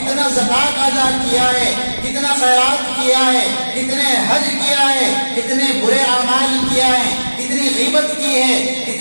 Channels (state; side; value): inverted; both; correlation -1.00